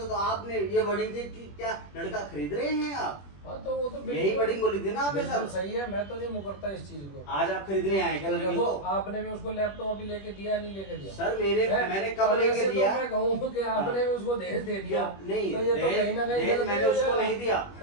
तो आपने ये वर्डिंग थी कि क्या लड़का खरीद रहे हैं आप? हाँ तो वो तो यही वर्डिंग बोली थी ना आपने सर। सही है, मैं तो नहीं मुकरता इस चीज को। आज आप खरीदने आए क्या लड़की को? आपने भी उसको लैपटॉप अभी लेके दिया नहीं लेके दिया? सर मैंने कब लेके दिया? तो मैं कहूँ कि आपने भी उसको दहेज दे दिया। नहीं, तो ये तो कहीं ना कहीं मैंने उसको नहीं दिया,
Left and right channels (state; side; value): late; right; 21 ms